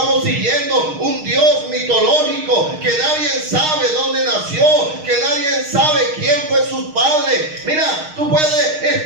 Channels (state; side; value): late; left; 6.4 ms